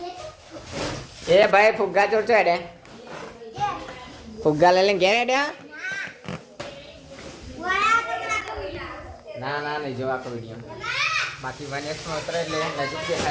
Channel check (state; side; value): identical; both; correlation 1.00